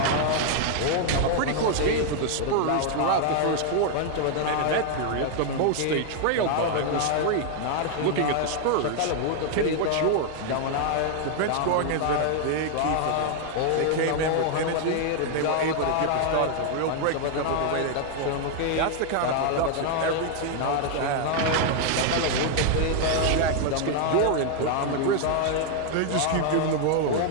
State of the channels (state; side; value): different; both; correlation 0.00